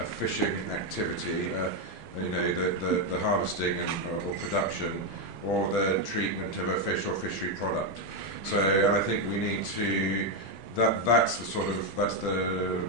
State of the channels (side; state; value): both; normal; correlation 0.04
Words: fishing activity, you know, the harvesting or production, or the treatment of a fish or fishery product. So I think we need to, that's the